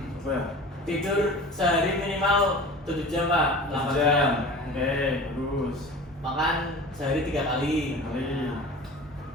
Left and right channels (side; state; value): both; normal; correlation 0.38